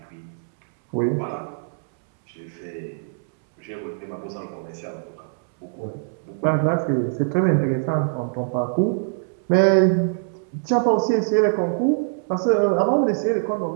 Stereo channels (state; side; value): silent; left; 63 dB below the other